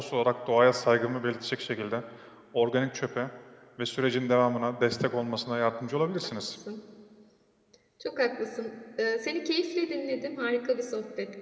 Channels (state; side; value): identical; both; correlation 1.00